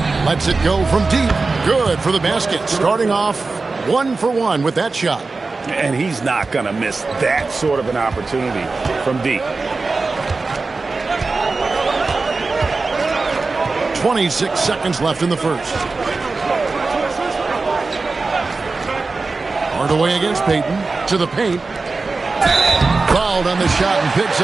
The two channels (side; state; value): left; quieter; 3.9 dB